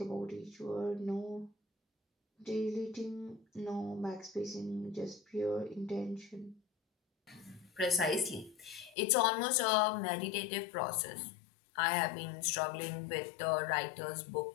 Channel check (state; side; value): drops out; right; at 9.0 s